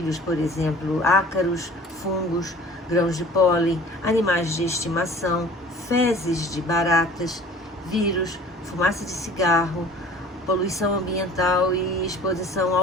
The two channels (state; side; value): normal; both; correlation 0.47